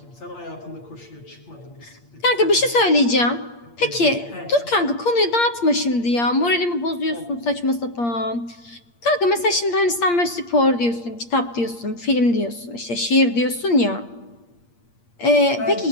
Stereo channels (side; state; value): right; late; 8.6 ms